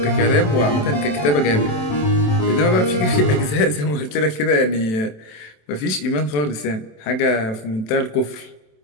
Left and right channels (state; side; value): late; right; 27 ms